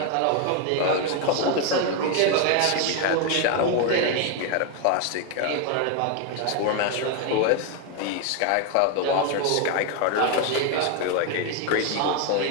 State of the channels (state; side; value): different; both; correlation 0.01